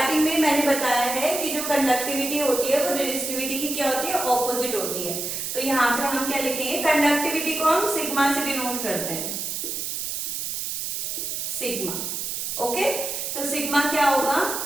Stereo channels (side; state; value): right; noise; hiss, 3 dB below the sound